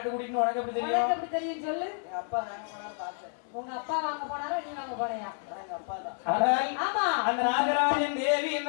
கூட்டின்னு உனக்கு எப்படி தெரியும்? உனக்கு எப்படி தெரியும் சொல்லு. எங்க அப்பா வாங்க போனாரு பார்த்தேன். உங்க அப்பா வாங்க போனாரா, நீ வாங்க போனியா? எங்க அப்பா தான். ஆனால் ஆமா. அந்த நாகராஜன் தேவி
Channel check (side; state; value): right; silent; 58 dB below the other